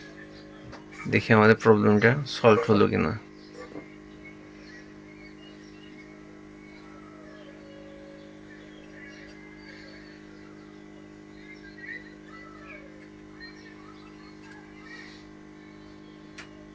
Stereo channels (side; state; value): both; identical; correlation 1.00